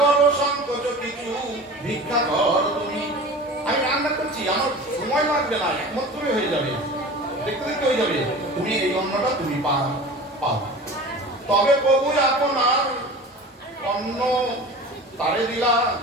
সংকোচ কিছু, ভিক্ষা কর তুমি। আমি রান্না করছি, আমার সময় লাগবে না, একমাত্রই হয়ে যাবে, দেখতে দেখতে হয়ে যাবে। তুমি এই অন্নটা তুমি পাও। তবে প্রভু আপনার অন্ন তারে দিলা,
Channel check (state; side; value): normal; both; correlation 0.37